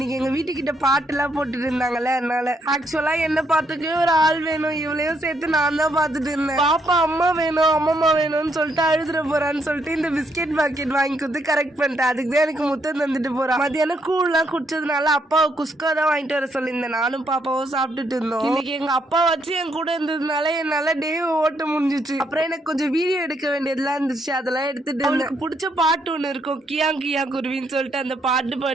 எங்க வீட்டுக்கிட்ட பாட்டு எல்லாம் போட்டுட்டு இருந்தாங்கல்ல, அதனால ஆக்சுவலா என்ன பார்த்துக்கவே ஒரு ஆள் வேணும், இவளையும் சேர்த்து நான் தான் பாத்துட்டு இருந்தேன். பாப்பா அம்மா வேணும் அம்மம்மா வேணும்னு சொல்லிட்டு அழுதுற போறான்னு சொல்லிட்டு இந்த பிஸ்கெட் பாக்கெட் வாங்கி கொடுத்து கரெக்ட் பண்ணிட்டேன். அதுக்கு தான் எனக்கு முத்தம் தந்துட்டு போறான். மதியானம் கூழ்லாம் குடிச்சதுனால அப்பாவை குஸ்கா தான் வாங்கிட்டு வர சொல்லியிருந்தேன். நானும் பாப்பாவும் சாப்பிட்டுட்டு இருந்தோம். இன்னைக்கு எங்க அப்பா வச்சு என் கூட இருந்ததுனால என்னால டே ஓட்ட முடிஞ்சிச்சு. அப்புறம் எனக்கு கொஞ்சம் வீடியோ எடுக்க வேண்டியதெல்லாம் இருந்துச்சு, அதெல்லாம் எடுத்துட்டு அவளுக்கு பிடிச்ச பாட்டு ஒண்ணு இருக்கும், கியா கியா குருவின்னு சொல்லிட்டு அந்த பாட்டு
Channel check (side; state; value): both; normal; correlation 0.74